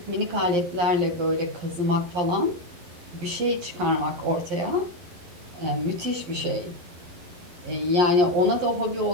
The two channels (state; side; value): late; left; 11 ms